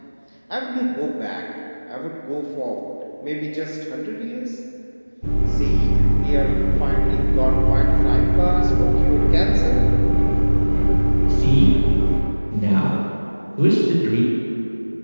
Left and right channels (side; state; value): both; inverted; correlation -1.00